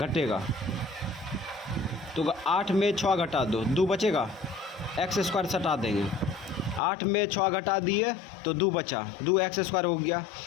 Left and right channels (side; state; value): right; drops out; at 6.8 s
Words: तो 8 में 6 घटा दो, 2 बचेगा, एक्स स्क्वायर हटा देंगे, 8 में 6 घटा दिए तो 2 बचा, 2 एक्स स्क्वायर हो गया।